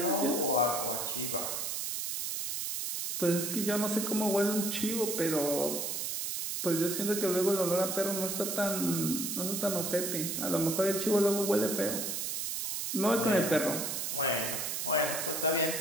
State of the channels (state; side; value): noise; right; hiss, 2 dB below the sound